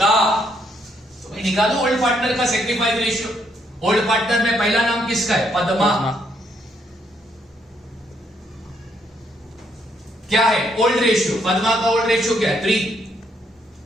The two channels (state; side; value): normal; both; correlation 0.73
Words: तो मैं निकालू ओल्ड पार्टनर का सेक्रीफाइस रेशियो। ओल्ड पार्टनर में पहला नाम किसका है? पद्मा। क्या है? Old ratio. पद्मा का ओल्ड रेशियो क्या है? 3।